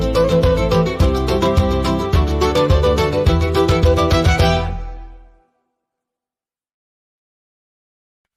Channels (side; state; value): both; identical; correlation 1.00